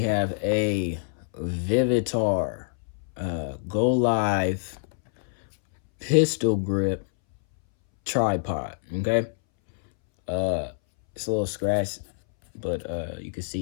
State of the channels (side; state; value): right; silent; 61 dB below the other